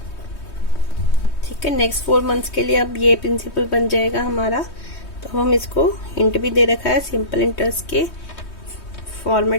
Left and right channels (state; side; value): late; right; 3.2 ms